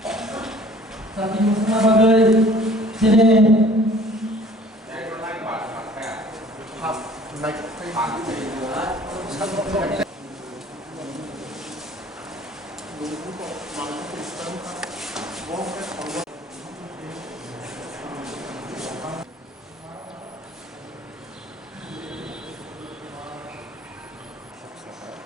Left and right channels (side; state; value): both; normal; correlation 0.51